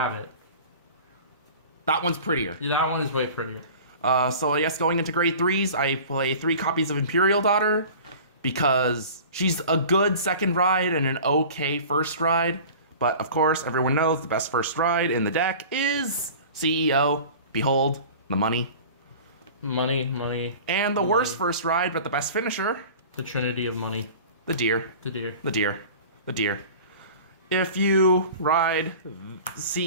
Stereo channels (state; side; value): inverted; both; correlation -0.41